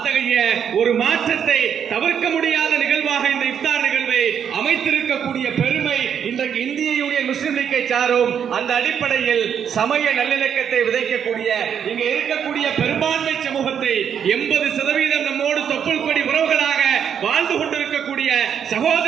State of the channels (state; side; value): quieter; left; 8.2 dB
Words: ஒரு மாற்றத்தை தவிர்க்க முடியாத நிகழ்வாக இந்த இஃப்தார் நிகழ்வை அமைத்திருக்கக்கூடிய பெருமை இன்றைக்கு இந்திய யூனியன் முஸ்லிம் லீக்கை சாரும். அந்த அடிப்படையில் சமய நல்லிணக்கத்தை விதைக்கக்கூடிய இங்க இருக்கக்கூடிய பெரும்பான்மை சமூகத்தை 80% நம்மோடு தொப்புள் கொடி உறவுகளாக வாழ்ந்து கொண்டிருக்கக்கூடிய